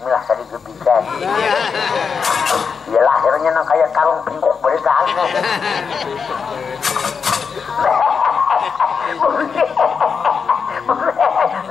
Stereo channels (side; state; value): right; quieter; 5.9 dB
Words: tadi bisa ya lahirnya nang kayak karung pingkuk beritaannya